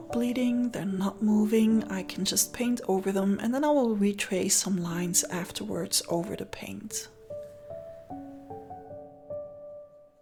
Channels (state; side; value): identical; both; correlation 1.00